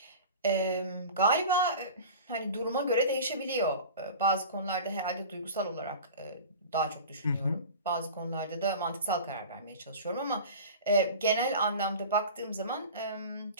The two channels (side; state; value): both; inverted; correlation -0.36